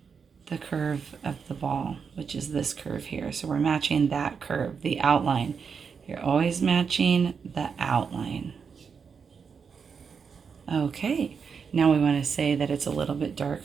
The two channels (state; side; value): quieter; left; 6.1 dB